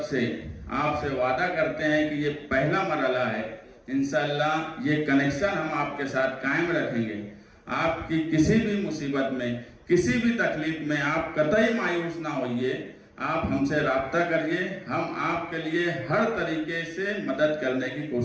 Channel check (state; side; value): identical; both; correlation 1.00